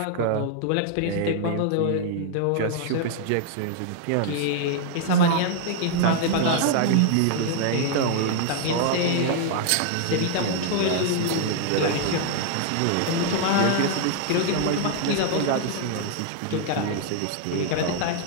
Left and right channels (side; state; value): both; different; correlation 0.00